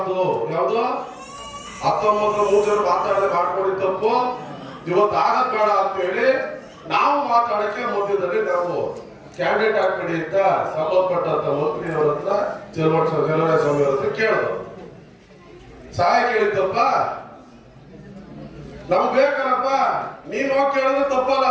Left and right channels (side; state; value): both; identical; correlation 1.00